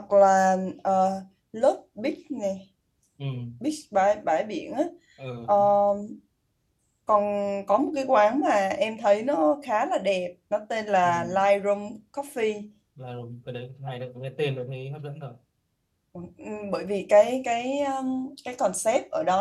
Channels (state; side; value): identical; both; correlation 1.00